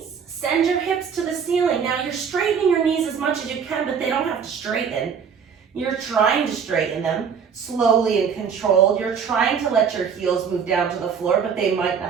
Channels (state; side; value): quieter; left; 6.7 dB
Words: Send your hips to the ceiling. Now, you're straightening your knees as much as you can, but they don't have to straighten. You're trying to straighten them slowly and controlled. You're trying to let your heels move down to the floor, but they might